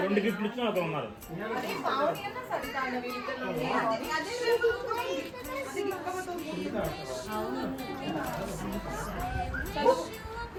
2 గిఫ్ట్లు ఇచ్చిన ఒకరు ఉన్నారు.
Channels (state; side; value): identical; both; correlation 1.00